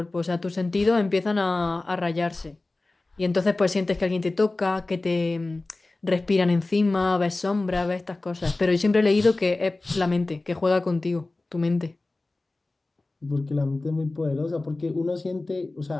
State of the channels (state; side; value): quieter; right; 3.1 dB